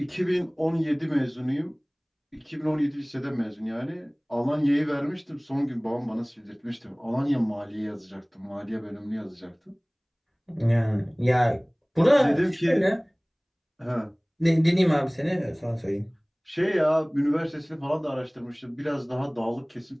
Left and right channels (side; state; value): both; identical; correlation 1.00